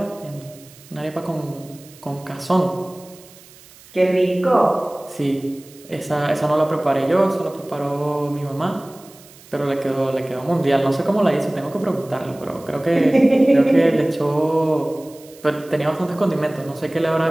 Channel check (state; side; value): noise; right; hiss, 23 dB below the sound